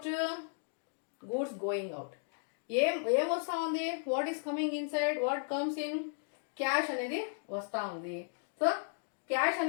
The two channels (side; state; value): right; silent; digital silence